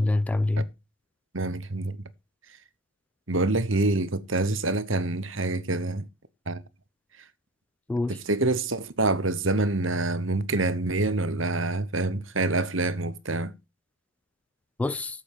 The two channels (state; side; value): normal; both; correlation 0.34